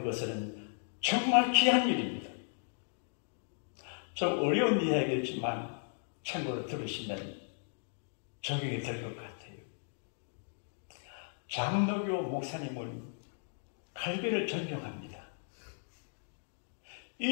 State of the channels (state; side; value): silent; right; digital silence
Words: 것은 정말 귀한 일입니다. 좀 어려운 이야기겠지만 참고로 들으시면 적용이 될 것 같아요. 장로교 목사님은 갈비를 존경합니다.